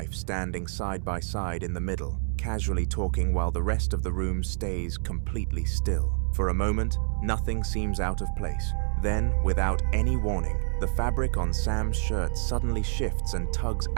standing side by side in the middle, casually talking while the rest of the room stays completely still. For a moment, nothing seems out of place. Then, without any warning, the fabric on Sam's shirt suddenly shifts and tugs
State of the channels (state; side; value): silent; left; 60 dB below the other